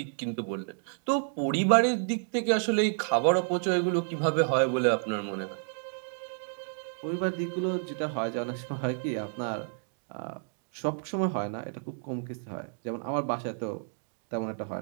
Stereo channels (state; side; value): silent; left; digital silence